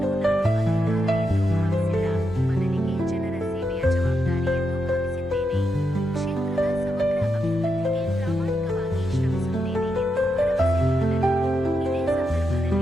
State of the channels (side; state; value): both; normal; correlation 0.85